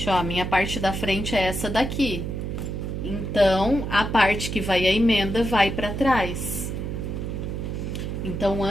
ó. A minha parte da frente é essa daqui. Então, a parte que vai a emenda vai pra trás. Então,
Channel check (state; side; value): noise; right; hum, 4 dB below the sound